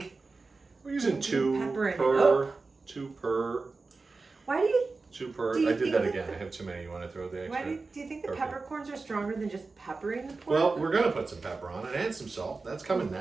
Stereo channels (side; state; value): left; quieter; 3.9 dB